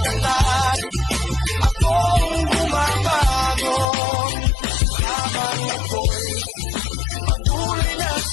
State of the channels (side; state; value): right; drops out; at 3.9 s